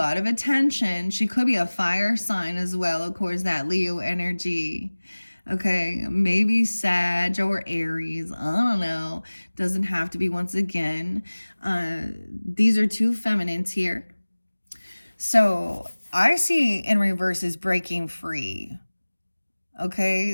of attention. She could be a fire sign as well, of course, that Leo energy. Okay, maybe Sag or Aries. I don't know. Doesn't have to be once again. These are two feminines here. So I see in reverse is breaking free.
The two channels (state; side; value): inverted; both; correlation -1.00